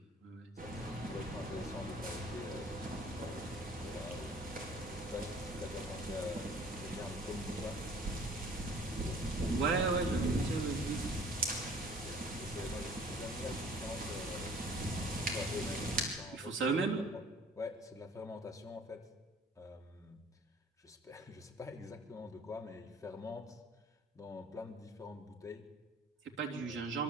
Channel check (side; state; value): both; normal; correlation 0.51